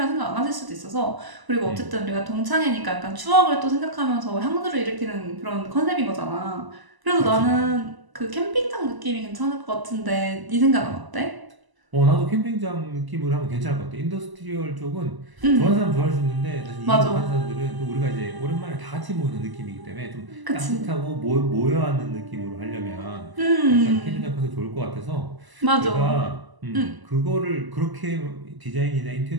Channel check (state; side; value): late; left; 1.0 ms